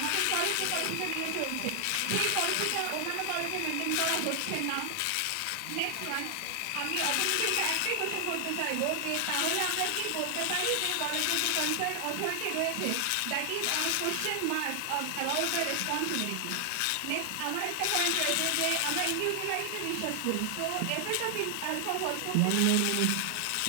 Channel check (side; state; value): both; different; correlation 0.00